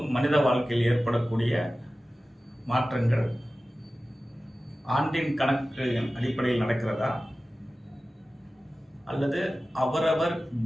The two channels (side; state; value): both; normal; correlation 0.95